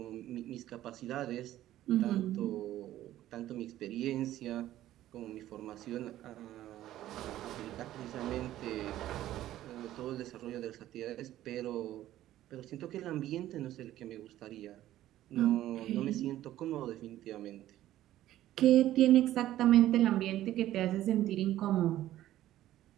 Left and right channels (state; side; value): quieter; left; 13.7 dB